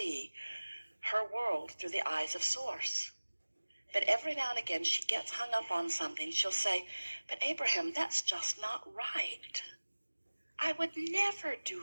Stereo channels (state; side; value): inverted; both; correlation -1.00